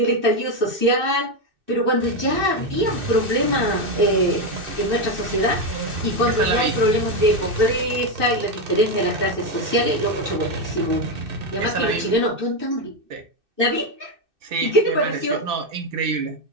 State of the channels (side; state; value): left; late; 2.6 ms